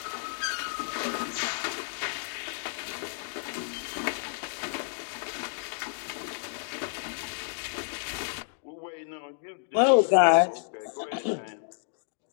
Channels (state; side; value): silent; right; digital silence